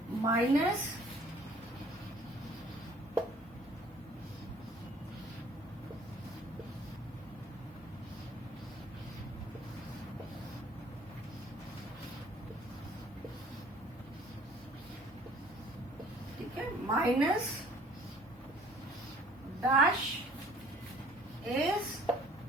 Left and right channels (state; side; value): normal; both; correlation 0.54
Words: माइनस ठीक है. Minus dash is